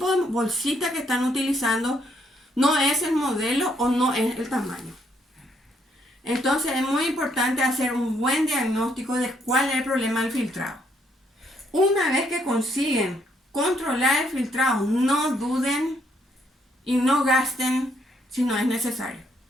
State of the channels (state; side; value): normal; both; correlation 0.72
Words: de bolsita que están utilizando no es el modelo o no es el tamaño. Entonces es muy importante hacer un buen diagnóstico de cuál es el problema del filtrado. Una vez que consiguen controlar el filtrado, no duden y no gasten si no es necesario.